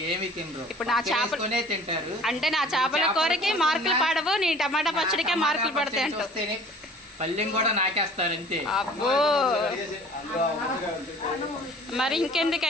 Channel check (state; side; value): normal; both; correlation 0.49